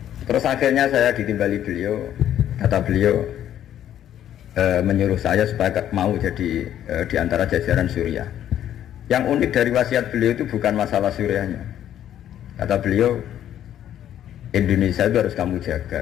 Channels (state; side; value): quieter; right; 11.0 dB